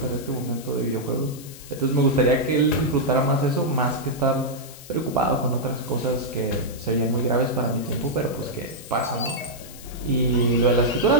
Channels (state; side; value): noise; left; hiss, 17 dB below the sound